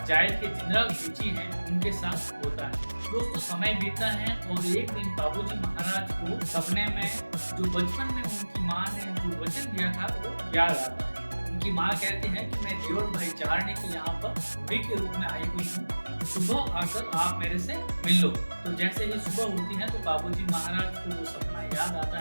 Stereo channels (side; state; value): both; inverted; correlation -1.00